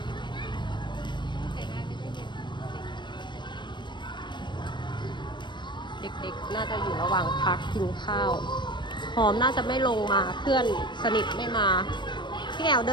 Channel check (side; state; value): right; late; 0.22 ms